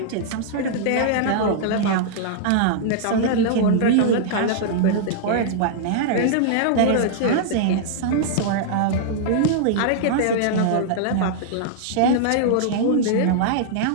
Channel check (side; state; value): both; different; correlation -0.01